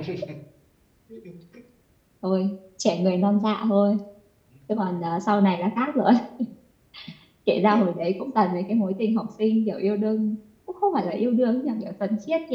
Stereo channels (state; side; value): identical; both; correlation 1.00